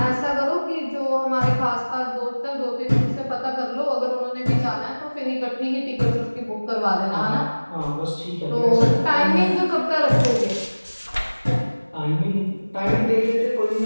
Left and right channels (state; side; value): inverted; both; correlation -1.00